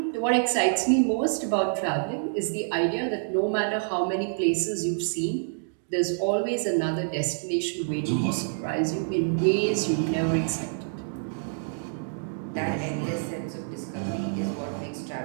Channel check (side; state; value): left; silent; digital silence